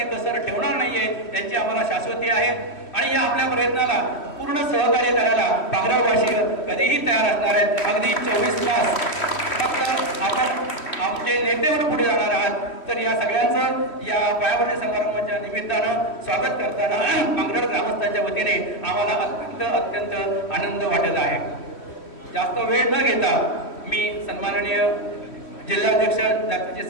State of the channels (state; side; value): late; right; 3.1 ms